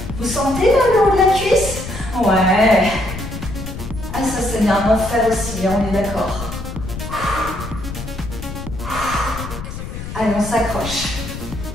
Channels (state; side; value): noise; left; rumble, 9 dB below the sound